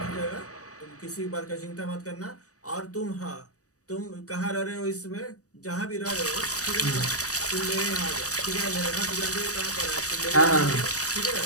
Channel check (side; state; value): right; late; 0.66 ms